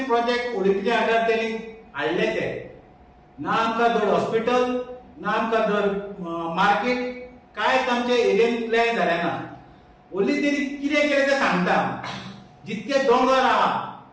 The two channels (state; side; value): identical; both; correlation 1.00